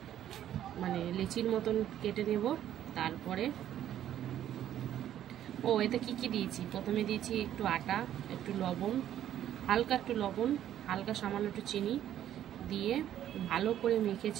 মানে লিচির মতন কেটে নেব। তারপরে এতে কি কি দিয়েছি, প্রথমে দিয়েছি একটু আটা, একটু লবণ, হালকা একটু লবণ, হালকা সামান্য একটু চিনি দিয়ে ভালো করে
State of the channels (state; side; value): quieter; left; 11.3 dB